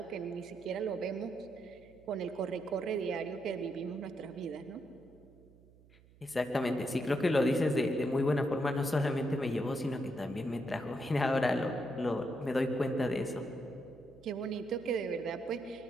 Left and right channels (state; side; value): noise; right; hum, 26 dB below the sound